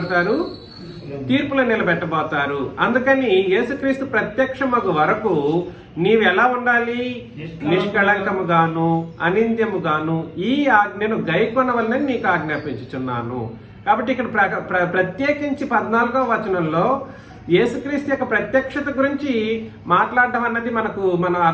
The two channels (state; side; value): identical; both; correlation 1.00